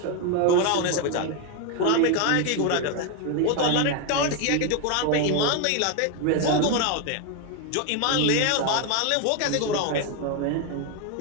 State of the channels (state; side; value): different; both; correlation 0.01